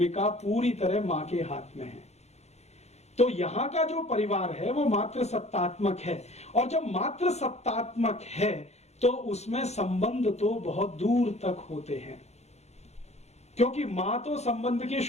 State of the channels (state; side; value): late; right; 0.32 ms